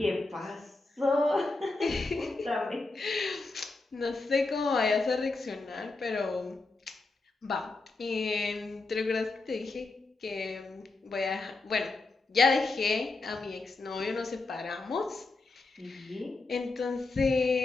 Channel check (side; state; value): right; quieter; 3.5 dB